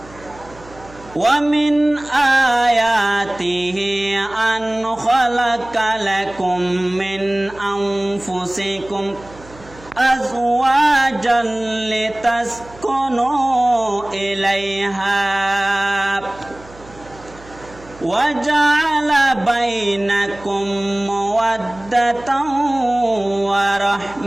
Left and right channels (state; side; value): noise; right; hum, 21 dB below the sound